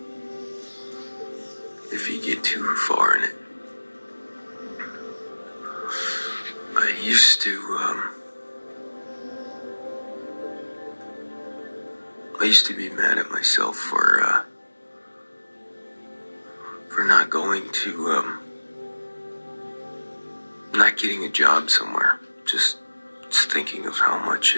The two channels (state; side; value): inverted; both; correlation -1.00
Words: If you get too far in it. I used to be mad at myself for not going to, not getting a job somewhere. Just thinking of how much